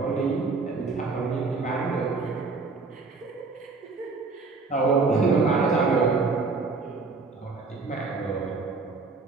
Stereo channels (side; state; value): left; quieter; 4.2 dB